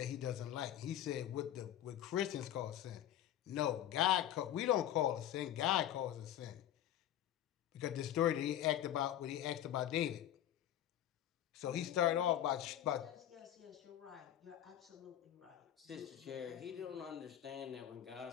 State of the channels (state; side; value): quieter; right; 11.7 dB